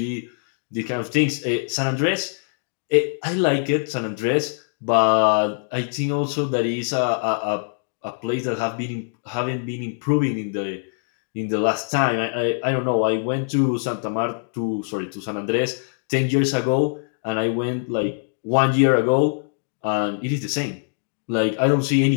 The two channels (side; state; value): right; silent; digital silence